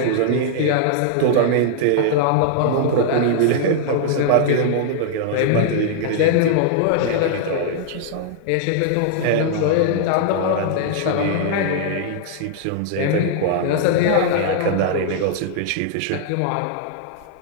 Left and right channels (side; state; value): both; different; correlation -0.01